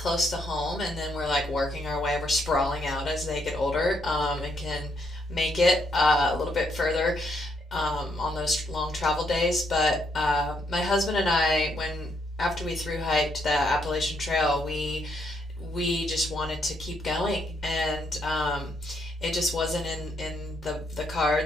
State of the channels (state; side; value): normal; both; correlation 0.75